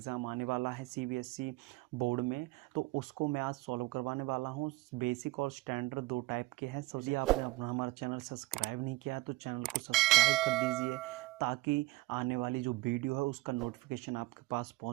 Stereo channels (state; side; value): quieter; left; 20.0 dB